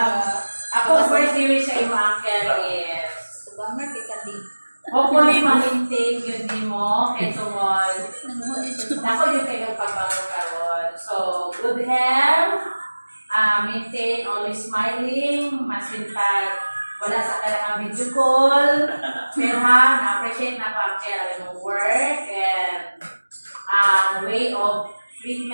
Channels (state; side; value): inverted; both; correlation -1.00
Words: Ako, birthday wish sa iyo, Uncle, is hopefully, ma-maintain yun din mo. Kaya sumol. Ako yung kailang pagbangon karon. So, good health. Maintain, always smiling. Masin pag wala sa kailangan video call. Pero ha, na-appreciate na pa-care yung work and way of